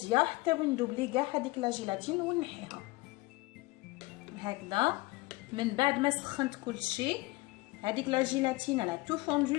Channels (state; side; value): quieter; right; 22.1 dB